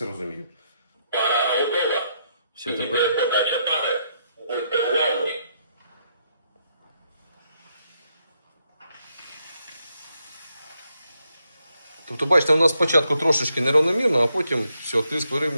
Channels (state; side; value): inverted; both; correlation -0.77